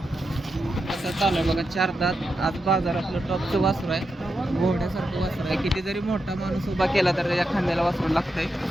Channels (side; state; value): both; normal; correlation 0.87